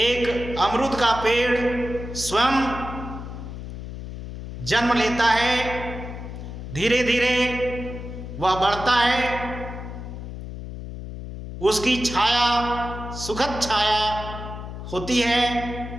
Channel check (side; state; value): left; noise; hum, 9 dB below the sound